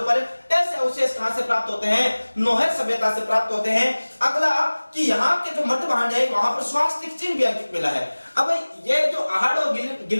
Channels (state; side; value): inverted; both; correlation -1.00